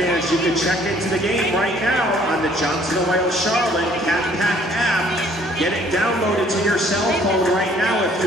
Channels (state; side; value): normal; both; correlation 0.59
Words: you can check into the game right now on the Johnson Wales Charlotte Cat Pack app. Get it downloaded to your cell phone right now if